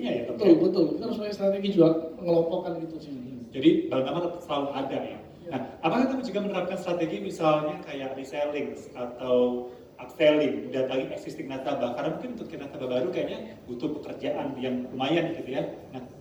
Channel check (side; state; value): both; identical; correlation 1.00